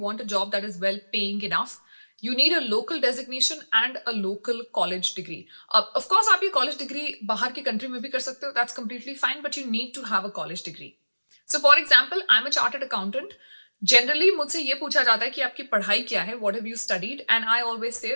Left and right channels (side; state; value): both; inverted; correlation -1.00